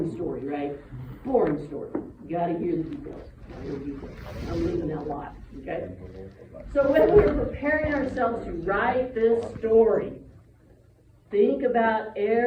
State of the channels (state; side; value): identical; both; correlation 1.00